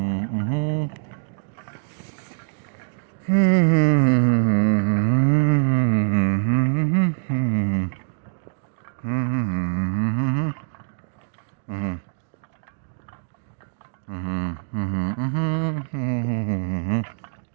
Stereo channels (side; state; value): left; silent; digital silence